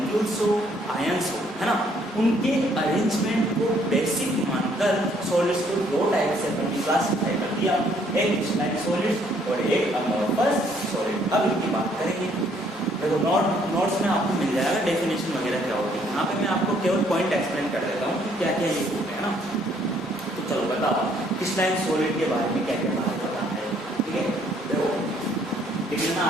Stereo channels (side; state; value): both; normal; correlation 0.65